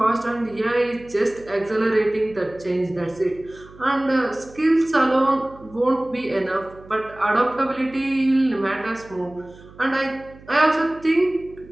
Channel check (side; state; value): right; noise; hum, 22 dB below the sound